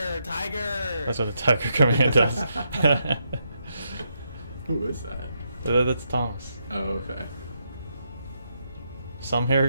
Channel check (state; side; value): inverted; both; correlation -0.80